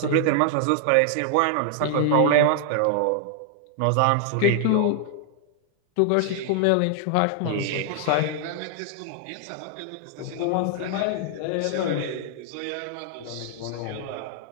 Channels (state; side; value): different; both; correlation -0.01